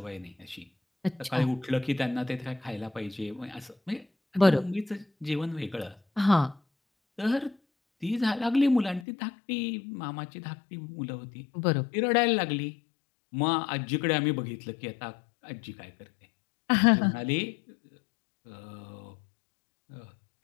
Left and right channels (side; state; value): right; drops out; at 9.1 s